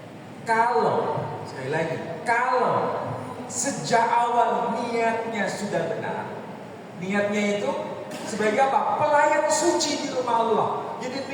Sekali lagi, kalau sejak awal niatnya sudah benar, niatnya itu sebagai apa? Pelayan suci di rumah Allah. Jadi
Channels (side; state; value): both; identical; correlation 1.00